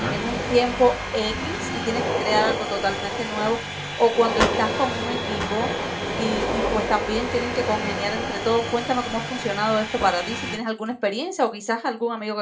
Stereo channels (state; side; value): identical; both; correlation 1.00